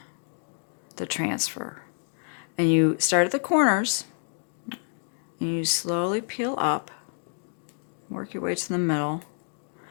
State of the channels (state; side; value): silent; right; 59 dB below the other